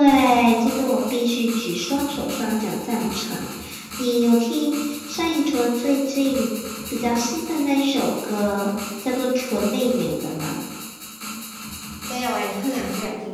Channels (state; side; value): identical; both; correlation 1.00